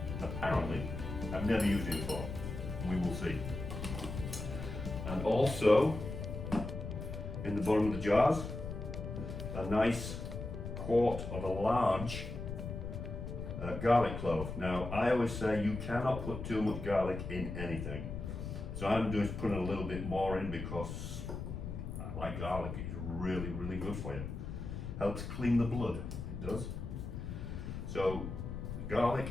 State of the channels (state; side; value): noise; left; rumble, 6 dB below the sound